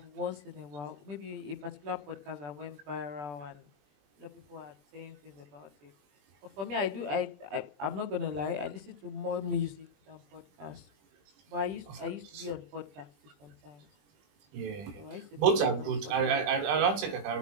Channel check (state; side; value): late; left; 21 ms